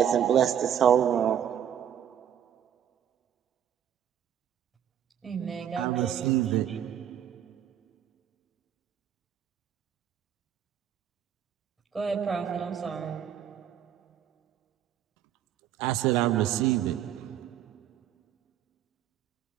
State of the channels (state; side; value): quieter; left; 9.8 dB